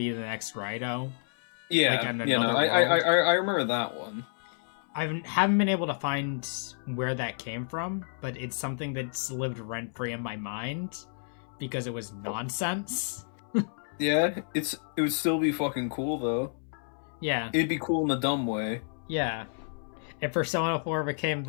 the next Raido. Yeah, Like, I remember that one. I haven't been able to find where that came from, but it's something that's lived rent-free in my mind because it was nonsense. Yeah, it would still be fucking cool though. Yeah. It'd be cool in a dumb way. Yeah. If Persona 4 became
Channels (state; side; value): silent; right; 58 dB below the other